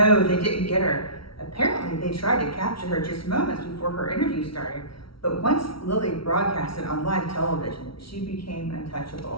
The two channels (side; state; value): right; late; 0.75 ms